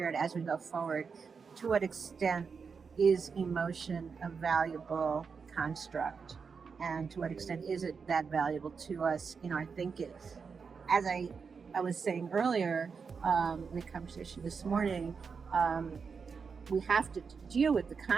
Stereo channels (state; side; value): quieter; left; 5.6 dB